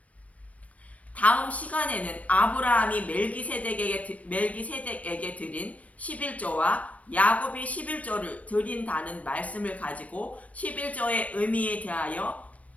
다음 시간에는 아브라함이 멜기세덱에게 드린 11조와 야곱이 11조를 드린다는 말씀을 가지고 11조의 의미에 대하여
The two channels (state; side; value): late; right; 0.067 ms